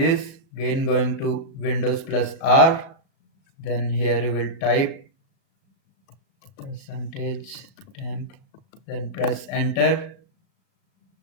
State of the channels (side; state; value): right; late; 37 ms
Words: again going to Windows plus R. Then here you will type percentage temp. Then press enter.